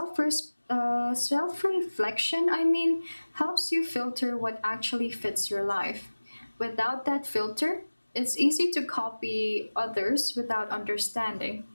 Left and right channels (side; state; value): both; inverted; correlation -1.00